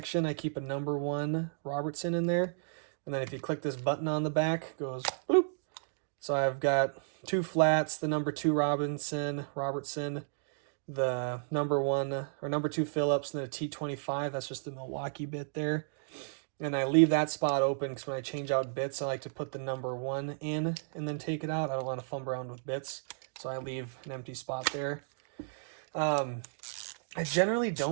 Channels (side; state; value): left; silent; digital silence